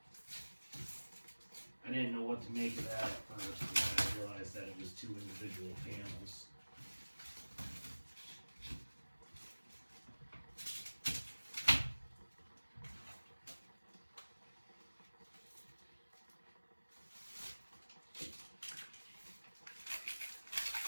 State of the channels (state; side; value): inverted; both; correlation -1.00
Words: I didn't know what to make of that at first, and then I realized that it was two individual panels.